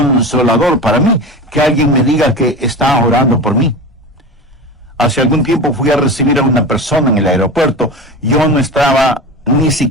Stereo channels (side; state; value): both; normal; correlation 0.28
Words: para mí que alguien me diga que está orando por mí. Hace algún tiempo fui a recibir a una persona en el aeropuerto. Yo no estaba ni